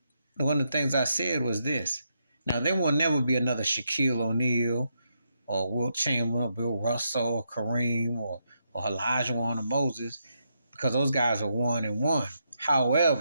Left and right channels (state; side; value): inverted; both; correlation -0.81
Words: one of the things I said was this. Now, there will never be another Shaquille O'Neal or Wilt Chamberlain or Bill Russell or Kareem or Elijah Warren or Moses because those guys are 1-1.